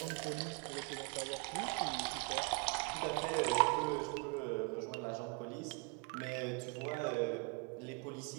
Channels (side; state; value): left; quieter; 30.6 dB